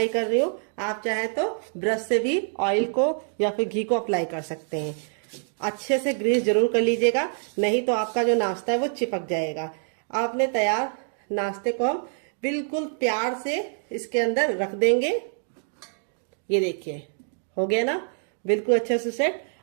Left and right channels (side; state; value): left; silent; 58 dB below the other